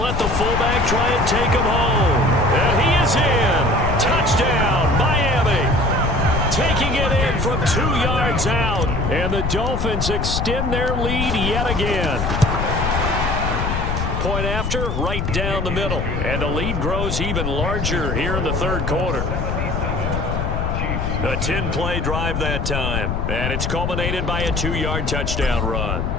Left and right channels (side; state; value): left; noise; rumble, 1 dB below the sound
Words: the fullback try and take him home. And he is in. Touchdown, Miami. Taking it in from 2 yards out. And the Dolphins extend their lead yet again. Point after, right down the middle. And the lead grows even larger here in the 3rd quarter. A 10-play drive that time. And it's culminated by a 2-yard touchdown run.